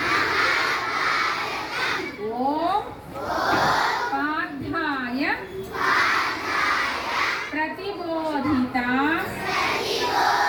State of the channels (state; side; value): identical; both; correlation 1.00